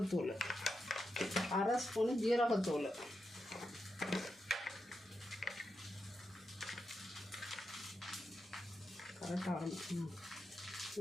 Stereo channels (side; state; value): both; normal; correlation 0.87